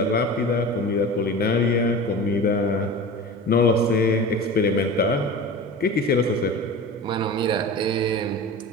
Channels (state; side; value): normal; both; correlation 0.33